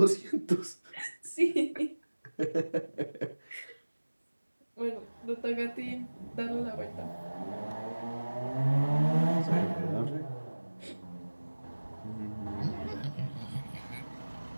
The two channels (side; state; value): both; inverted; correlation -1.00